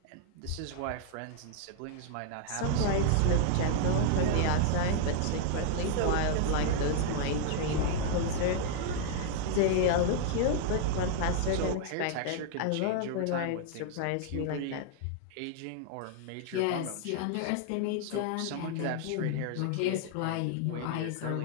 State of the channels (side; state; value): both; different; correlation 0.00